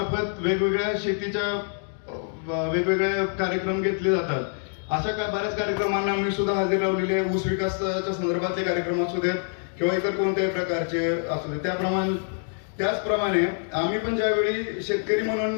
वेगवेगळ्या शेतीच्या वेगवेगळे कार्यक्रम घेतले जातात. अशा बऱ्याच कार्यक्रमांना मी सुद्धा हजेरी लावलेली आहे. ऊस विकासाच्या संदर्भातले कार्यक्रम असू देत किंवा इतर कोणत्याही प्रकारचे असू देत. त्याचप्रमाणे आम्ही पण ज्यावेळी शेतकरी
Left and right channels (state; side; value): silent; right; 60 dB below the other